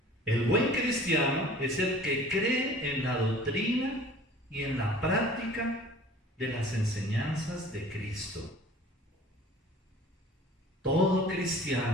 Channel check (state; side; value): normal; both; correlation 0.46